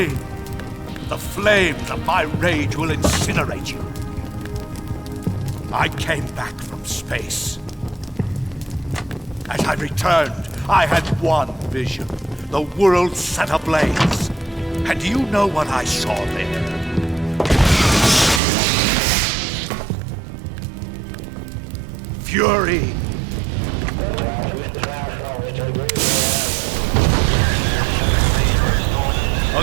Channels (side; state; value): left; drops out; at 18.4 s